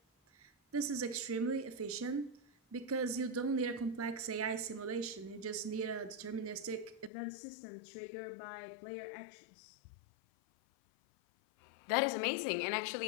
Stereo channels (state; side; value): drops out; right; at 7.1 s